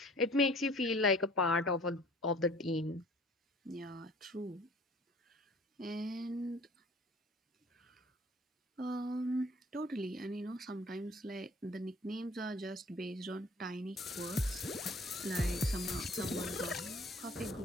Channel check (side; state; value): both; normal; correlation 0.51